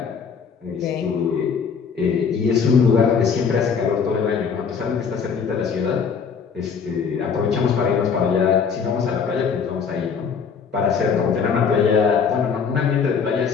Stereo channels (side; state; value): right; quieter; 6.2 dB